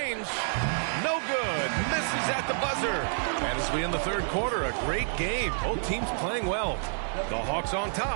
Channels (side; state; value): left; silent; digital silence